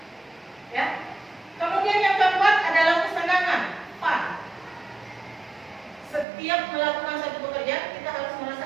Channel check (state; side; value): drops out; left; at 6.2 s